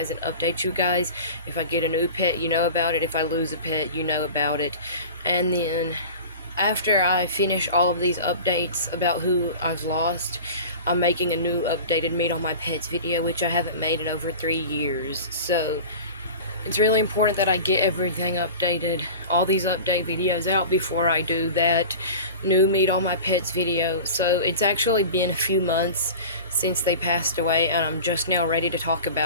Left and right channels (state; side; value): inverted; both; correlation -0.36